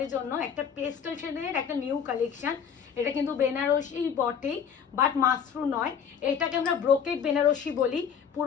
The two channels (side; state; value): right; quieter; 7.4 dB